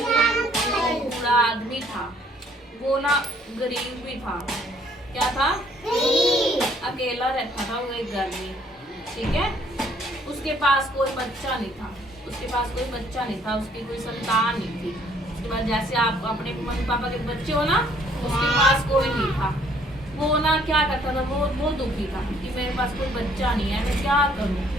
अंकल। बूढ़ा आदमी था, वो ना गरीब भी था। क्या था? गरीब। अकेला रहता था वो एक घर में, ठीक है? उसके पास कोई बच्चा नहीं था, उसके पास कोई बच्चा नहीं था, उसकी कोई संतान नहीं थी। उसके बाद जैसे आप अपने मम्मी पापा के बच्चे हो ना, उसके पास कोई नहीं था। वो ना क्या करता था, वो दुखी था कि मेरे पास कोई बच्चा नहीं है, मैं क्या करूं,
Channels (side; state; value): both; normal; correlation 0.63